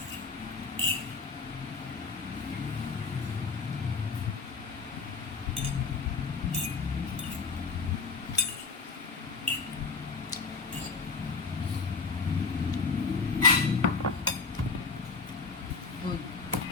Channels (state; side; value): quieter; right; 4.7 dB